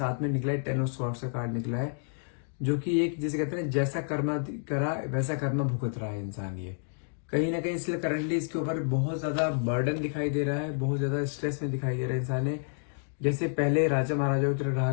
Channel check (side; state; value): right; silent; digital silence